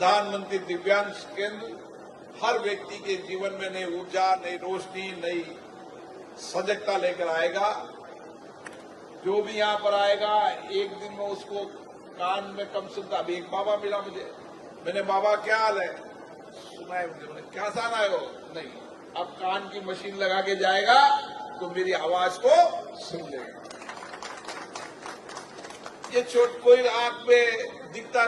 दिव्यांग केंद्र हर व्यक्ति के जीवन में नई ऊर्जा, नई रोशनी, नई सजगता लेकर आएगा। जो भी यहाँ पर आएगा एक दिन में उसको कान में कम सुनता। अभी एक बाबा मिला मुझे, मैंने बाबा क्या हाल है, सुना है मुझे, मैंने क्या जाना है वो, नहीं, अब कान की मशीन लगा के जाएगा तो मेरी आवाज को सुन लेगा। ये छोट कोई आंख में दिखता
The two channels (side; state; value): both; identical; correlation 1.00